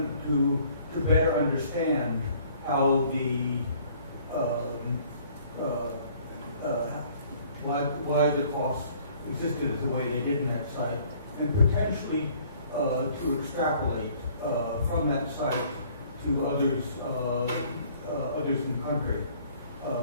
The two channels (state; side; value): inverted; both; correlation -0.58